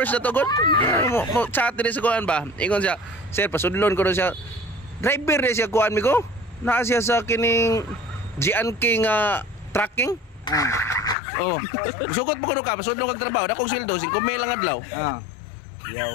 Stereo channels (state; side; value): drops out; right; at 11.2 s